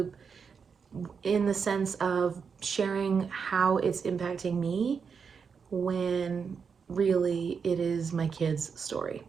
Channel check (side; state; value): left; quieter; 6.0 dB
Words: in the sense of sharing how it's impacting me when really it is my kids' story.